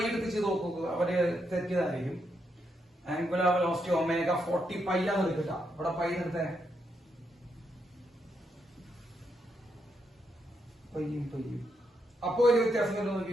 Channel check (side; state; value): both; normal; correlation 0.80